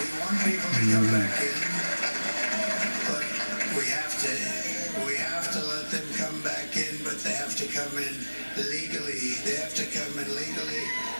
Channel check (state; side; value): inverted; both; correlation -1.00